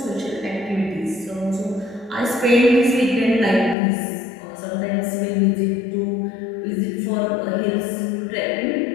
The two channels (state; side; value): drops out; right; at 3.8 s